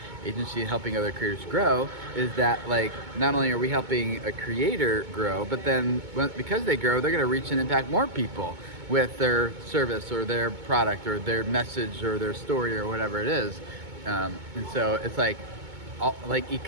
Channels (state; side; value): late; left; 2.2 ms